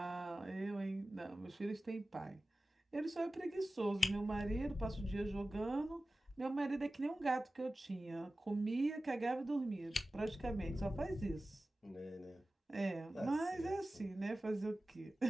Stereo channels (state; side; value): normal; both; correlation 0.95